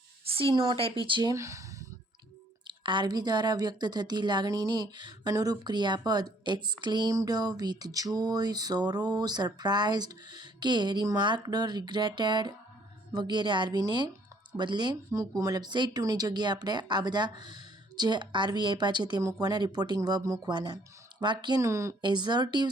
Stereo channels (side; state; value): both; normal; correlation 0.62